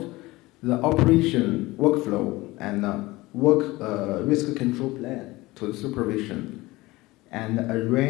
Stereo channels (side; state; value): right; quieter; 20.3 dB